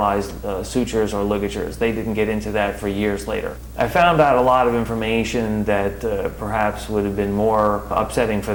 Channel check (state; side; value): identical; both; correlation 1.00